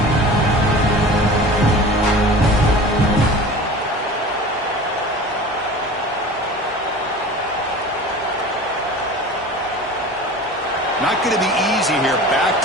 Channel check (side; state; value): both; normal; correlation 0.38